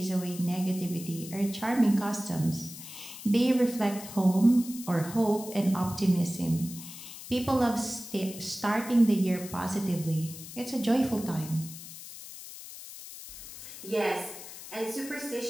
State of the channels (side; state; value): left; noise; hiss, 13 dB below the sound